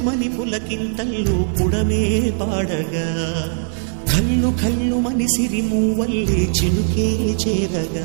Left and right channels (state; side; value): silent; left; 63 dB below the other